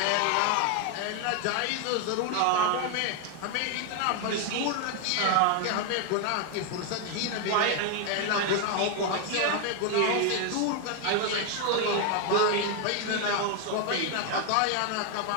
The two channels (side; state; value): both; different; correlation 0.01